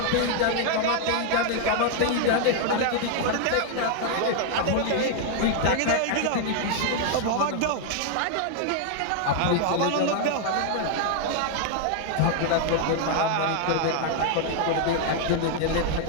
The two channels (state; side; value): different; both; correlation 0.00